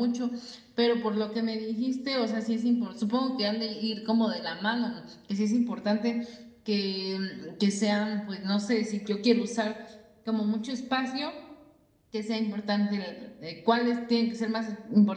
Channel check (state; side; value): identical; both; correlation 1.00